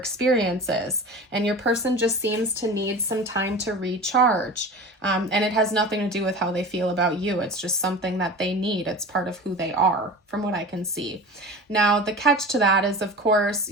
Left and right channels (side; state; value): both; normal; correlation 0.35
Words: is. And your person just seems to need some time to recharge. And it has nothing to do with how they feel about you. It's just something that they need. It's part of who they are, from what I can see. Now, the catch to that is, of course,